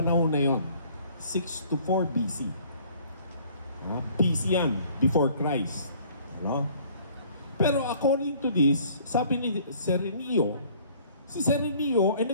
na yon, 6 to 4 BC. BC yan, before Christ. No? Pero according to this, sabi ni Serenio, si Serenio ay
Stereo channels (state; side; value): inverted; both; correlation -0.56